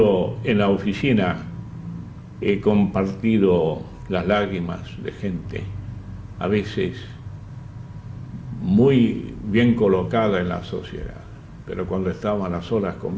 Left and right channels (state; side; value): identical; both; correlation 1.00